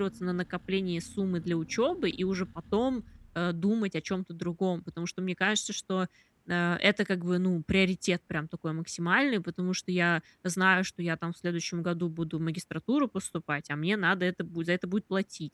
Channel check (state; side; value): identical; both; correlation 1.00